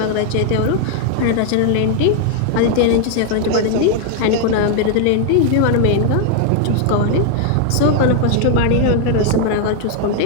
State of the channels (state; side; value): different; both; correlation 0.00